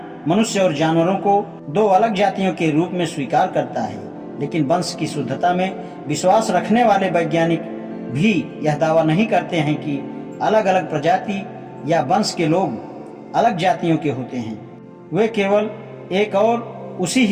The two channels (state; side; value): identical; both; correlation 1.00